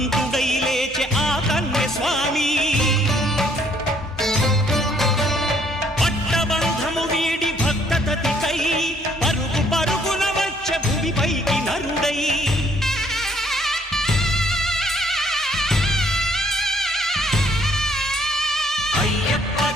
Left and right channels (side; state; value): both; normal; correlation 0.65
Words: లేచె ఆ కన్య స్వామి పట్టబంధము వీడి భక్తతతికై పరుగు పరుగున వచ్చె భూమిపైకి నరుడై